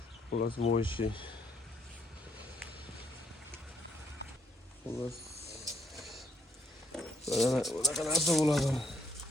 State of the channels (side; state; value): both; normal; correlation 0.70